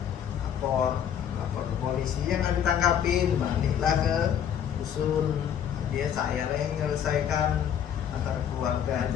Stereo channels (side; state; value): right; quieter; 9.0 dB